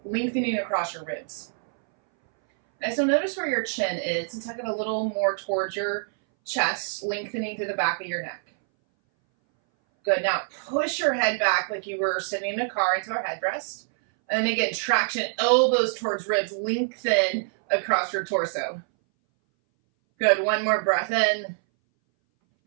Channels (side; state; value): left; silent; 60 dB below the other